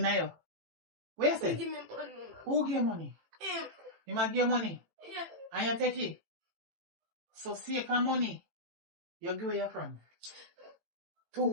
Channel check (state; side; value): late; left; 18 ms